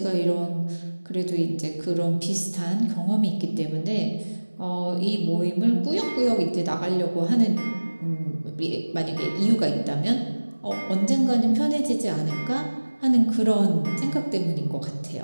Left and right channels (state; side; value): inverted; both; correlation -1.00